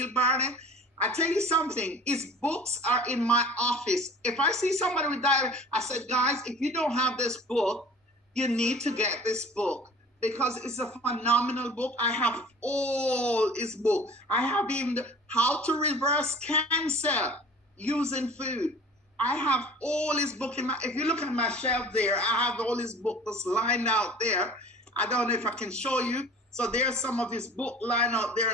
Barnett. I tell you something, his books are in my office. If I see somebody with diabetes, I said, guys, if you don't have this book, you need to get this book, because it's a phenomenal book. I have all his book. I have even How to Reverse Cancer Using Food. I have all his book if you look at my shelf there, I have all his book that's lined out there. I don't know if I can show you. So there's some of his book lined out there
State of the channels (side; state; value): both; normal; correlation 0.44